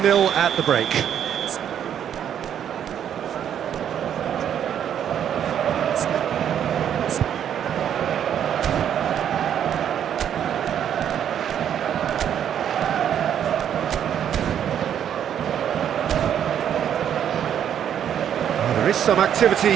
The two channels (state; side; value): quieter; left; 9.4 dB